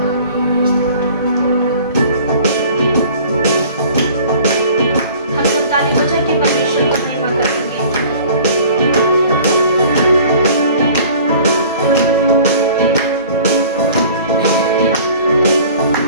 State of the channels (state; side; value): inverted; both; correlation -0.48